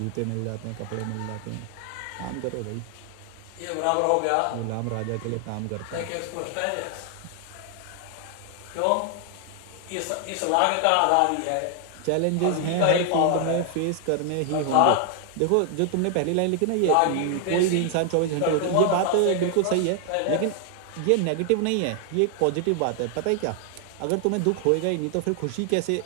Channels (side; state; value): both; different; correlation 0.00